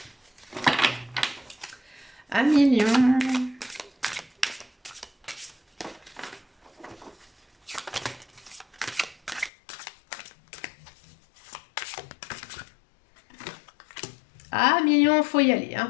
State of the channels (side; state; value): right; drops out; at 9.5 s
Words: Amis lions. Ah, million, faut y aller.